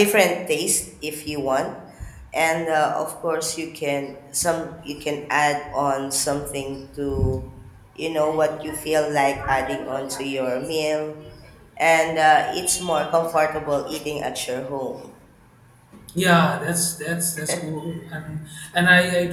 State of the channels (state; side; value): identical; both; correlation 1.00